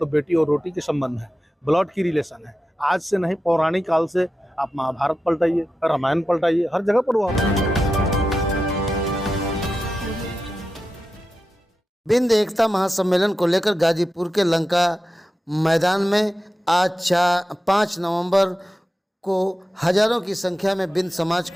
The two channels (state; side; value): normal; both; correlation 0.91